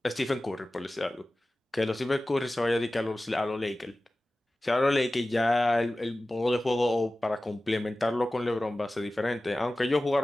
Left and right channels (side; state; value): both; normal; correlation 0.96